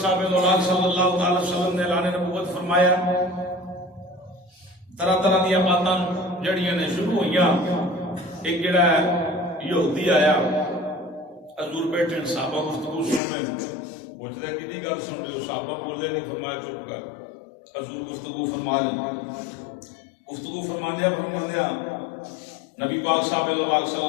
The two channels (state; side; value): drops out; right; at 13.2 s